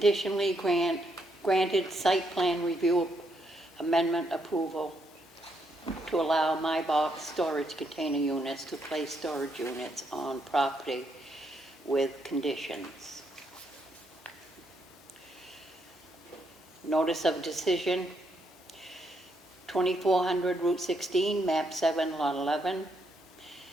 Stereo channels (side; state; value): both; normal; correlation 0.76